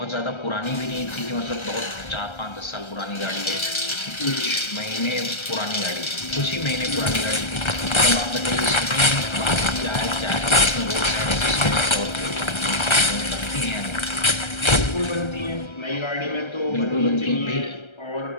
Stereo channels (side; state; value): right; late; 1.3 ms